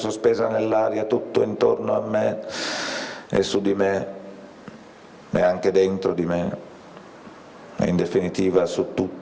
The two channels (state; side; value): identical; both; correlation 1.00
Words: nell'aria tutto intorno a me e su di me e anche dentro di me, e in definitiva su